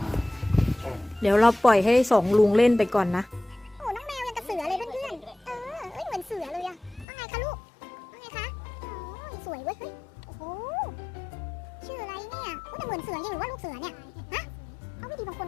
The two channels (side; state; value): right; drops out; at 7.1 s